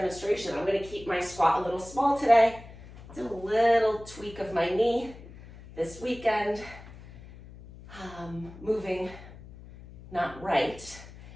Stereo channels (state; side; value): noise; left; hum, 17 dB below the sound